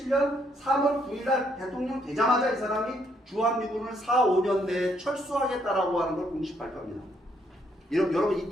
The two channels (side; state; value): both; normal; correlation 0.71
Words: 3월 9일날 대통령 되자마자 이 사람이 주한미군을 4, 5년 내에 철수하겠다라고 하는 걸 공식 발표합니다. 여러분